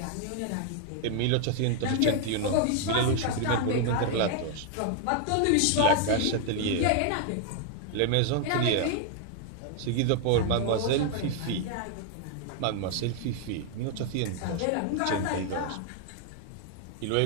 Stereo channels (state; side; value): different; both; correlation 0.00